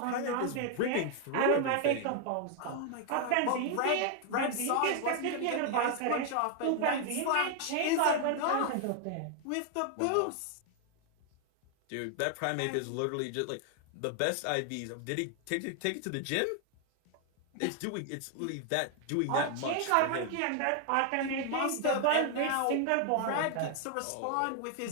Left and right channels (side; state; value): both; different; correlation 0.00